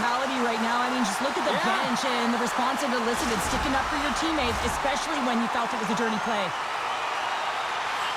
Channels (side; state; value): both; identical; correlation 1.00